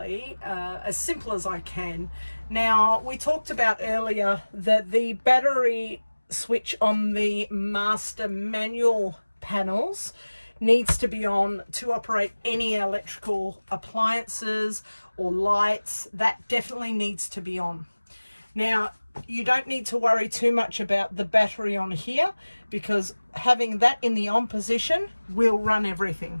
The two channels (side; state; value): both; inverted; correlation -1.00